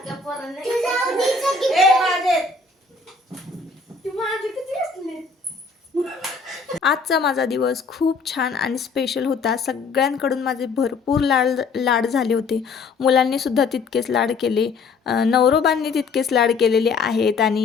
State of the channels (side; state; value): right; quieter; 4.4 dB